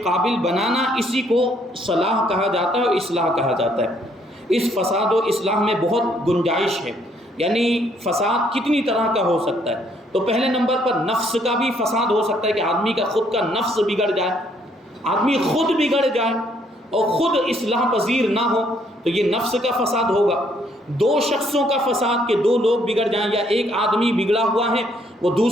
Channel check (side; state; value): both; normal; correlation 0.68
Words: قابل بنانا، اسی کو صلاح کہا جاتا ہے اور اصلاح کہا جاتا ہے۔ اس فساد و اصلاح میں بہت گنجائش ہے، یعنی فساد کتنی طرح کا ہو سکتا ہے۔ تو پہلے نمبر پر نفس کا بھی فساد ہو سکتا ہے کہ آدمی کا خود کا نفس بگڑ جائے، آدمی خود بگڑ جائے اور خود اصلاح پذیر نہ ہو، تو یہ نفس کا فساد ہوگا۔ دو شخصوں کا فساد کہ دو لوگ بگڑ جائیں، یا ایک آدمی بگڑا ہوا ہے وہ